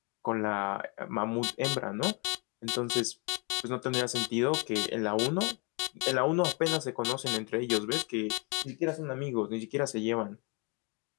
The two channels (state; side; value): quieter; right; 29.9 dB